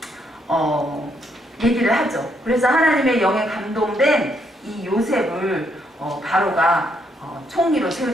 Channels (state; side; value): normal; both; correlation 0.74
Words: 얘기를 하죠. 그래서 하나님의 영에 감동된 이 요셉을 바로가 총리로